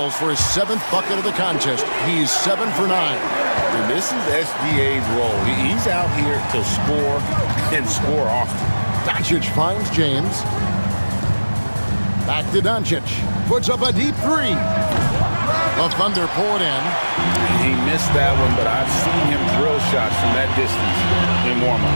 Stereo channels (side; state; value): both; inverted; correlation -1.00